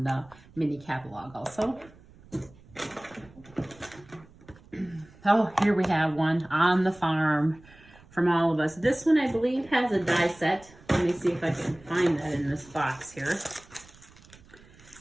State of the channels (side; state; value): right; noise; rumble, 24 dB below the sound